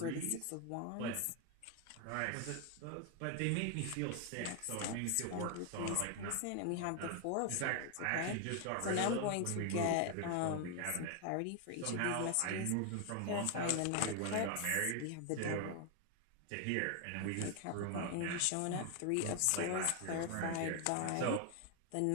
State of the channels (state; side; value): different; both; correlation 0.01